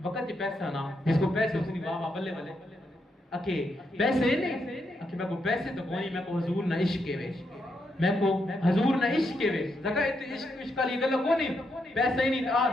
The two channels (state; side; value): normal; both; correlation 0.80